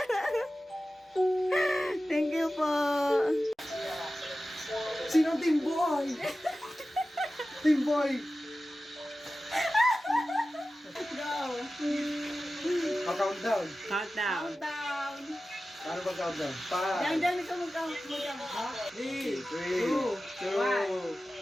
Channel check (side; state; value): both; normal; correlation 0.95